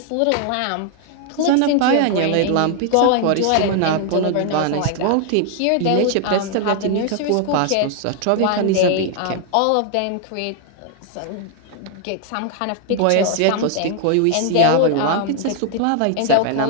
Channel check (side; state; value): both; different; correlation 0.00